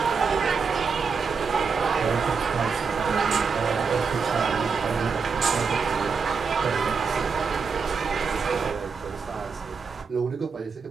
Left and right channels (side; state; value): left; quieter; 5.4 dB